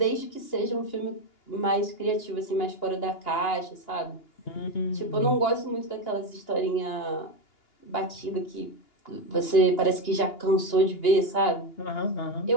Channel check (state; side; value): late; right; 2.8 ms